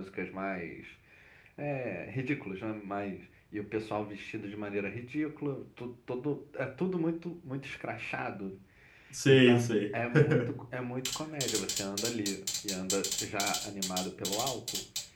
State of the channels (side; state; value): both; identical; correlation 1.00